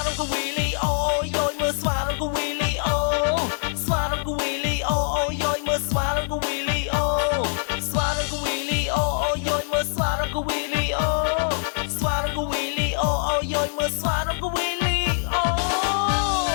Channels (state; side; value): silent; right; digital silence